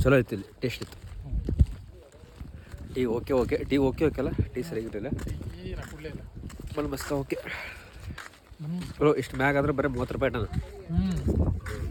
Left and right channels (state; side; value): identical; both; correlation 1.00